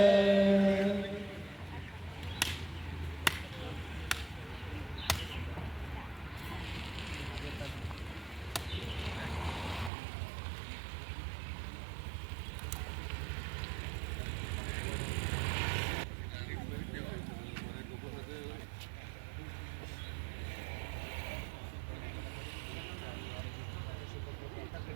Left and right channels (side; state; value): left; drops out; at 9.9 s